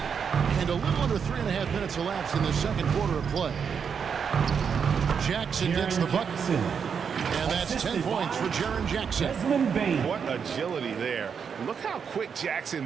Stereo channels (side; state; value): left; quieter; 6.7 dB